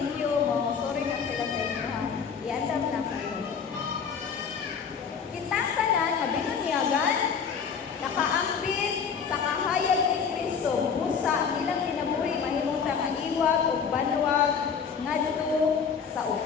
you mo. Sorry na sila sa inyo ha. Iandam na kayo. Kitang tanan, mabinunyagan, nakaambit sa kahayag ni Kristo, busa ang ilang kinabuhi, mahimong nga iwag o banwag ngadto sa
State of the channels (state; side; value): quieter; right; 6.5 dB